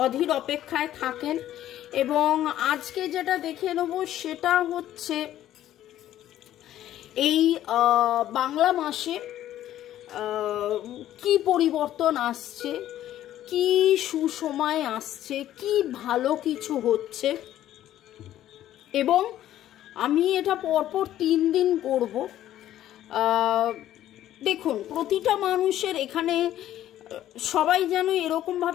অধীর অপেক্ষায় থাকেন। এবং আজকে যেটা দেখে নেব সেটা হচ্ছে এই বাংলা মাসে কি পরিবর্তন আসছে, কি সুসময় আসছে, কি ভালো কিছু হচ্ছে। এবং আমি এটা পরপর 3 দিন করব। দেখুন, প্রতিটা মানুষের এখানে সবাই যেন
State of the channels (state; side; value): quieter; right; 12.6 dB